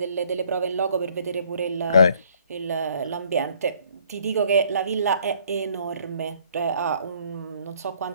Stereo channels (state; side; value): inverted; both; correlation -0.62